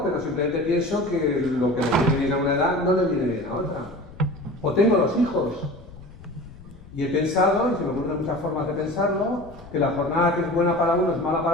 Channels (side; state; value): left; noise; rumble, 19 dB below the sound